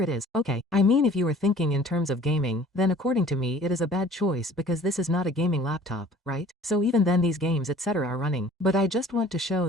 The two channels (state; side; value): normal; both; correlation 0.50